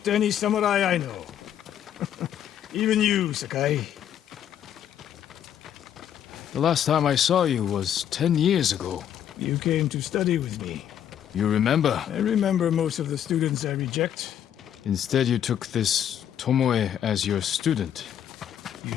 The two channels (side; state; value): right; quieter; 9.9 dB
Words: any samurai I know. Even you, Sakai. The last time I saw you was 10 years ago. You came to study with me. You remember? I remember most of the students I reject. Instead, you took this Tomoe as your student.